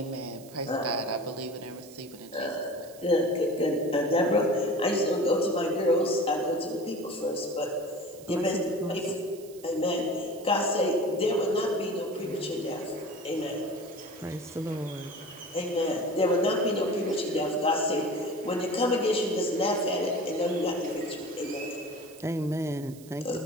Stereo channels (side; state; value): right; noise; hiss, 21 dB below the sound